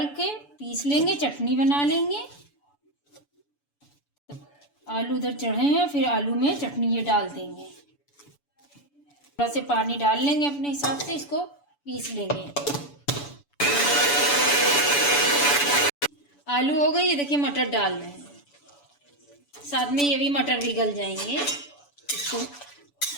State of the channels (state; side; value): late; right; 7.0 ms